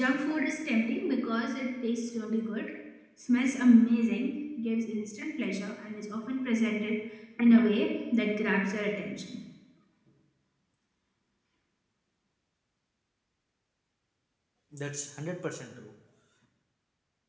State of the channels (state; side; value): identical; both; correlation 1.00